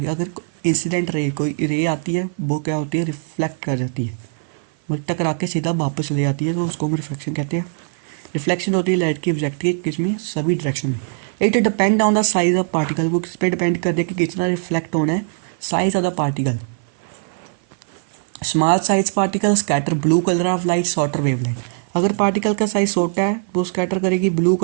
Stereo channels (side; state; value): left; silent; 56 dB below the other